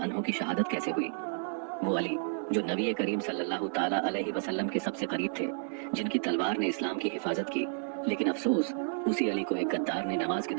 अन्हो की शहादत कैसे हुई। वो अली जो नबी करीम सल्लल्लाहु ताला अलैहि वसल्लम के सबसे करीब थे, जिनकी तलवार ने इस्लाम की हिफाजत की, लेकिन अफसोस उसी अली को एक गद्दार ने नमाज के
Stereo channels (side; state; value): left; silent; 57 dB below the other